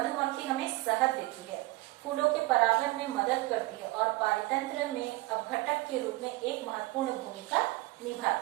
हमें शहद देती है, फूलों के परागण में मदद करती है और पारितंत्र में अपघटक के रूप में एक महत्वपूर्ण भूमिका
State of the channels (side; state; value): left; quieter; 20.3 dB